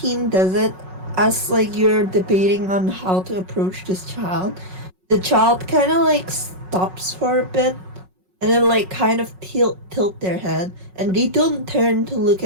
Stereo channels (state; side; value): late; left; 5.4 ms